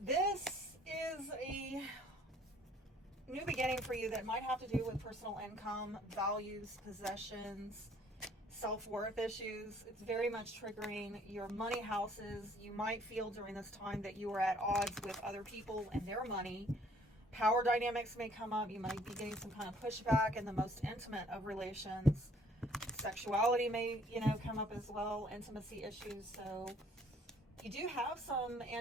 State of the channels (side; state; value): both; normal; correlation 0.59